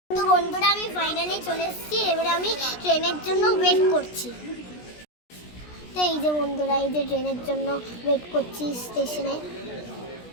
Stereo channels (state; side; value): late; right; 17 ms